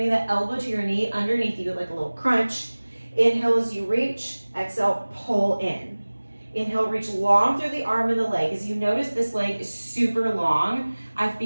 the elbow to your knee underneath you like a little crunch. Inhale as you reach. Exhale, pull in. Inhale, reach long through the arm and the leg. As you notice, this leg is super long. I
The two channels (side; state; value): both; inverted; correlation -1.00